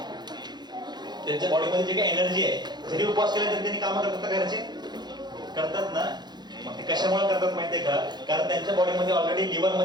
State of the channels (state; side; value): late; left; 0.21 ms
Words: त्यांच्या बॉडीमध्ये जे काही एनर्जी आहे, जरी उपवास केला तरी त्यांनी कामं करतात का, घरचे करतात ना. मग ते कशामुळे करतात माहितीये का, कारण त्यांच्या बॉडीमध्ये ऑलरेडी लिव्हर